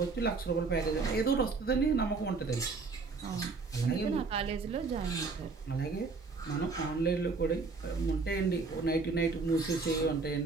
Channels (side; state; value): left; quieter; 4.2 dB